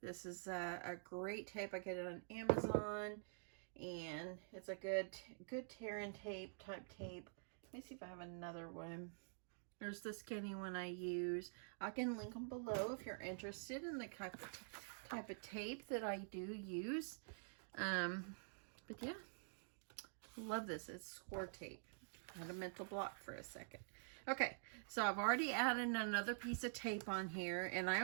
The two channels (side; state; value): left; silent; digital silence